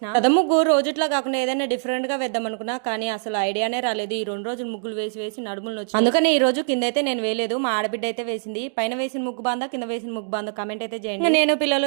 రథం ముగ్గు రోజుట్లా కాకుండా ఏదైనా డిఫరెంట్ గా వేద్దాం అనుకున్నా, కానీ అసలు ఐడియానే రాలేదు. ఈ 2 రోజులు ముగ్గులు వేసి వేసి నడుములు వచ్చి, అందుకని ఈ రోజు కింద అయితే నేను వేయలేదు. మా ఆడబిడ్డ అయితే వేసింది. పైన వేసిన ముగ్గు బాందా, కింద వేసిన ముగ్గు బాందా కామెంట్ అయితే చేయండి. నేను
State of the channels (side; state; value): left; silent; digital silence